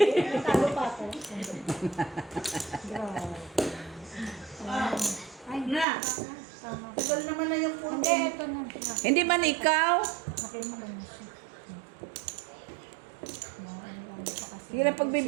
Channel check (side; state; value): left; drops out; at 5.9 s